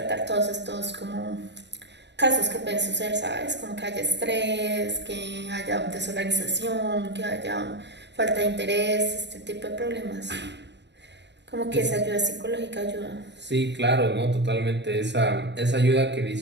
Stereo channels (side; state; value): left; late; 0.51 ms